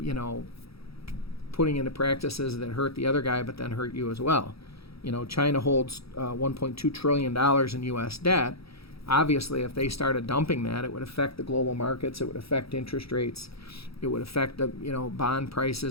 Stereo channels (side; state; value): right; late; 0.77 ms